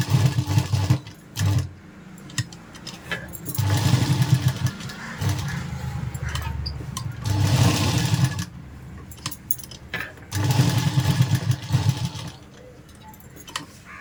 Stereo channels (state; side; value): identical; both; correlation 1.00